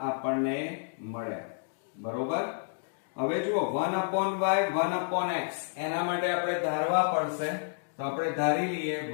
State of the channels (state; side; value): silent; right; digital silence